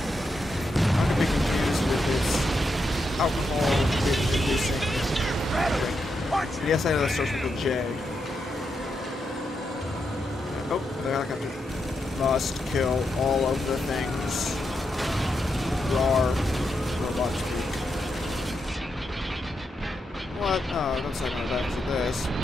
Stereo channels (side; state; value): both; normal; correlation 0.84